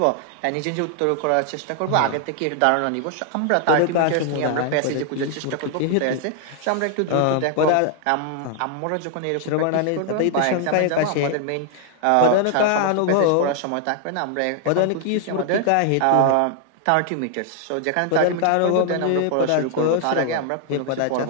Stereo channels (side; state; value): both; different; correlation 0.00